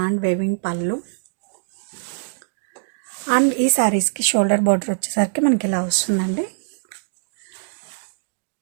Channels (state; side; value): silent; left; digital silence